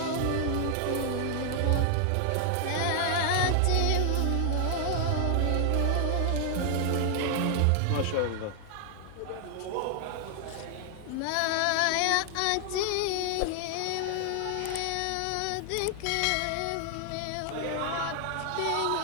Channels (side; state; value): both; different; correlation 0.00